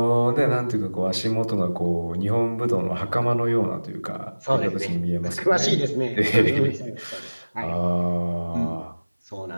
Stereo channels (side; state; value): both; inverted; correlation -1.00